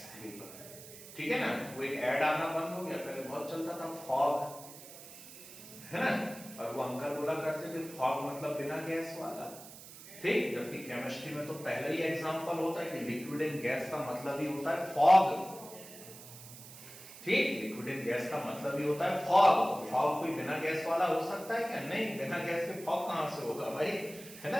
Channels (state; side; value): noise; right; hiss, 16 dB below the sound